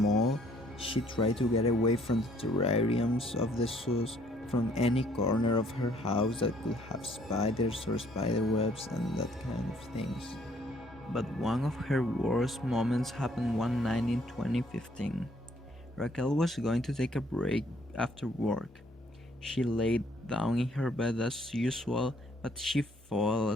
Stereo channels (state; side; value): normal; both; correlation 0.64